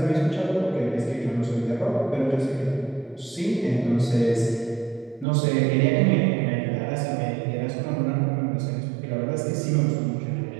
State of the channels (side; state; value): left; drops out; at 5.2 s